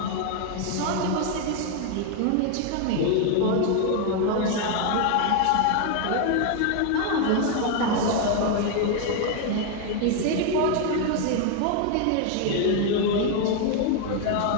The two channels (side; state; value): both; different; correlation 0.01